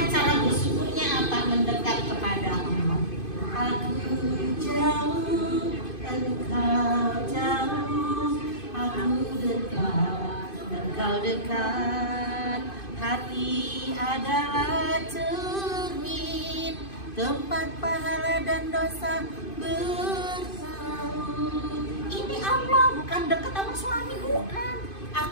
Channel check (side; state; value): right; late; 2.5 ms